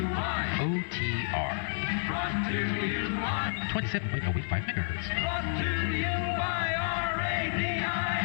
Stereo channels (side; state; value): right; silent; digital silence